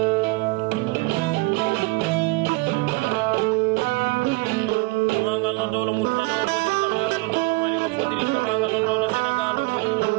no dolo multano fodiri tamaga no dolo mali o fodiri tamaga no dolo Senegal o fodiri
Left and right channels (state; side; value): quieter; left; 23.5 dB